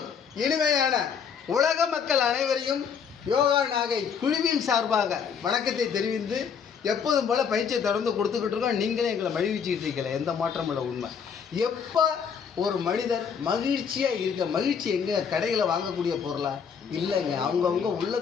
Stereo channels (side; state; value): right; quieter; 6.8 dB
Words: இனிமையான உலக மக்கள் அனைவரையும் யோகா நாகை குழுவின் சார்பாக வணக்கத்தை தெரிவித்து எப்போதும் போல் பயிற்சியை தொடர்ந்து கொடுத்துக்கிட்டு இருக்கோம். நீங்களே எங்களை மகிழ்ச்சிக்கிட்டு இருக்கல, எந்த மாற்றம் இல்லை. உண்மை எப்போ ஒரு மனிதர் மகிழ்ச்சியாக இருக்க, மகிழ்ச்சி எங்கே கடைகளை வாங்கக்கூடிய பொருளா இல்லைங்க, அவங்கவுங்க